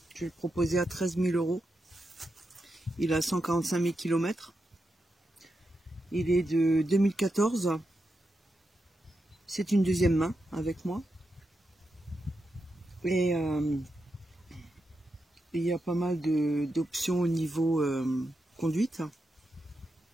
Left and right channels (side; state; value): both; normal; correlation 0.87